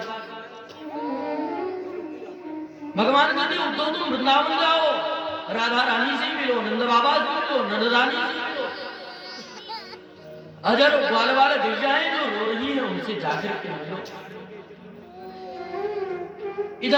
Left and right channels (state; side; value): identical; both; correlation 1.00